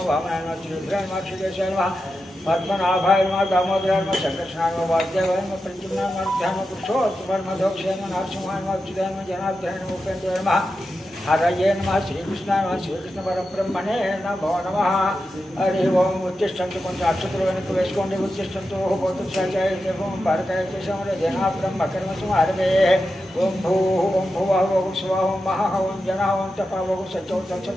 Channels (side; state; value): both; normal; correlation 0.90